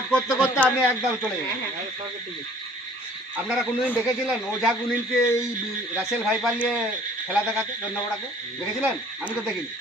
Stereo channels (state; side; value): normal; both; correlation 0.53